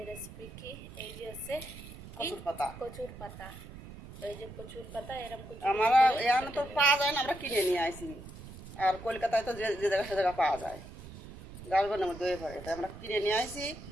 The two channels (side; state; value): right; noise; rumble, 14 dB below the sound